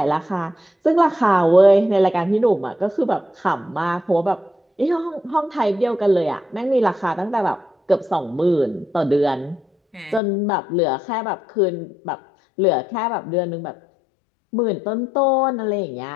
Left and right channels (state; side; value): drops out; right; at 10.2 s